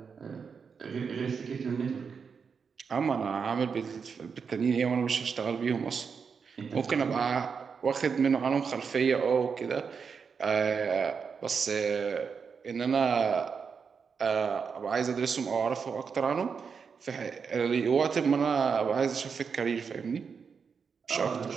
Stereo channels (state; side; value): quieter; left; 5.9 dB